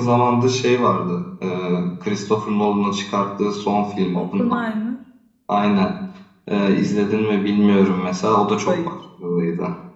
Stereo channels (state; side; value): identical; both; correlation 1.00